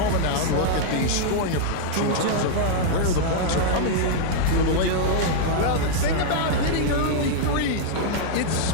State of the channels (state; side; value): different; both; correlation -0.01